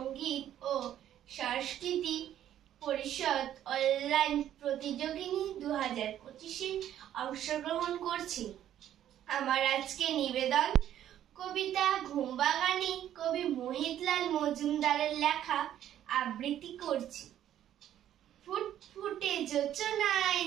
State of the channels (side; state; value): left; quieter; 11.3 dB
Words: ও সংস্কৃতি পরিষদ অনলাইন প্রতিযোগিনী 2025-এ অংশগ্রহণ করছি। আমার আজকে নিবেদন কবিতা ঘুমবাগানি কবি মোহিতলাল মজুমদারের লেখা আবৃত্তি করছি। ফুটফুটে যোচনায়